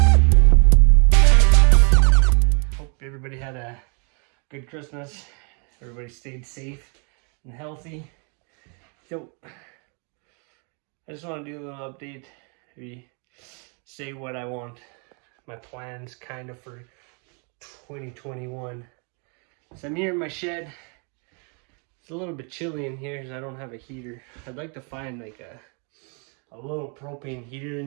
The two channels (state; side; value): quieter; left; 36.3 dB